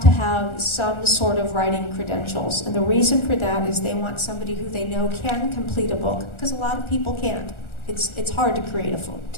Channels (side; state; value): right; late; 1.4 ms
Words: have some sort of writing credentials. And the reason for that is they want somebody who they know can complete a book, because a lot of people can't. It's hard to complete a